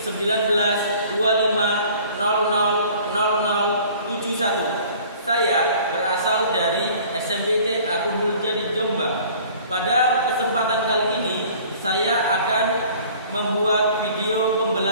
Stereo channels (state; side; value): inverted; both; correlation -0.50